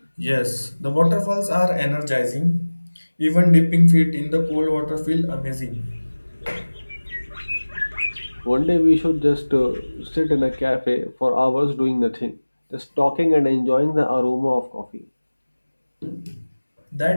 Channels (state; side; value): inverted; both; correlation -1.00